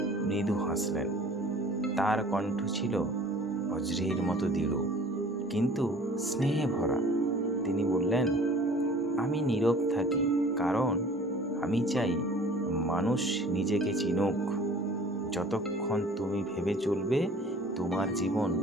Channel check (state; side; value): normal; both; correlation 0.49